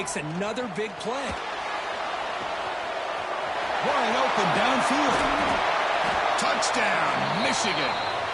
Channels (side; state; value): both; identical; correlation 1.00